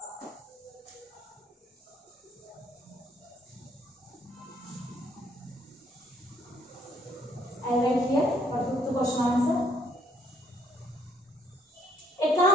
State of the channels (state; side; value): normal; both; correlation 0.66